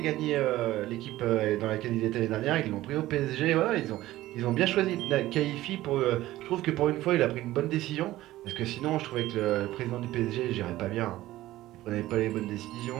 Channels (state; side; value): quieter; left; 15.9 dB